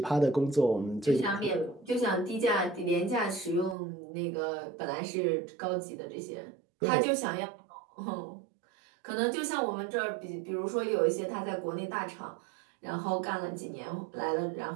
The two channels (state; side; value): drops out; left; at 3.8 s